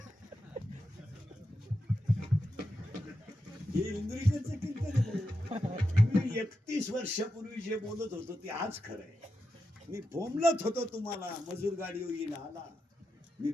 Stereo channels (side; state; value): both; normal; correlation 0.88